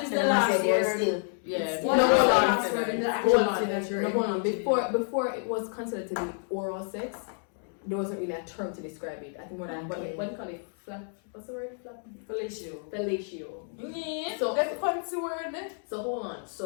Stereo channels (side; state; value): right; silent; 58 dB below the other